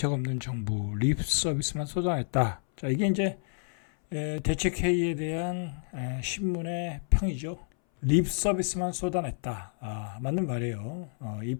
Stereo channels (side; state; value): right; silent; 58 dB below the other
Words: 없는 정부 립 서비스만 쏟아냈다. 자, 이게 이제 대책 회의에 대한 신문의 평이죠. 립 서비스만 쏟아냈다. 맞는 말이에요. 이